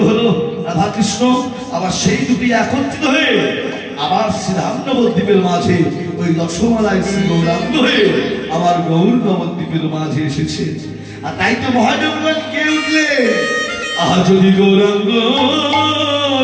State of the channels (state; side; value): identical; both; correlation 1.00